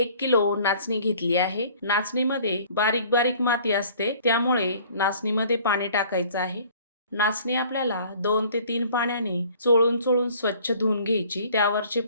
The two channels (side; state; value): both; inverted; correlation -0.52